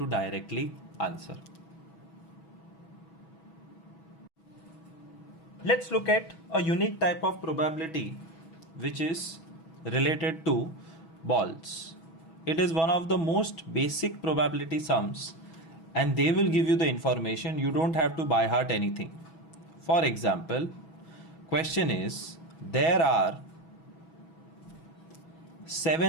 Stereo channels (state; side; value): late; right; 6.2 ms